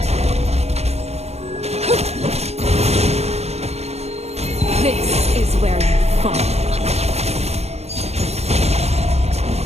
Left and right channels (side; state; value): left; late; 0.31 ms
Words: This is where you fall.